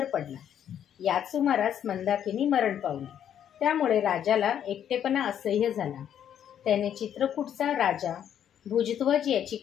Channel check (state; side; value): quieter; right; 9.6 dB